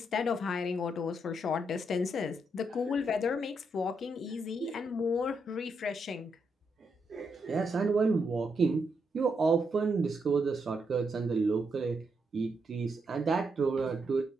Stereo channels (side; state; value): both; normal; correlation 0.80